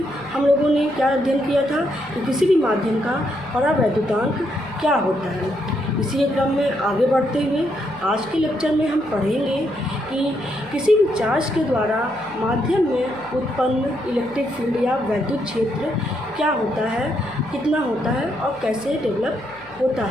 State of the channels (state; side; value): noise; left; hum, 24 dB below the sound